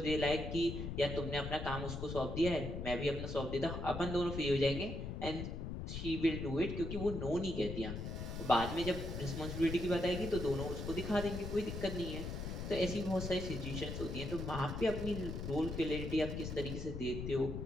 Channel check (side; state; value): left; noise; rumble, 5 dB below the sound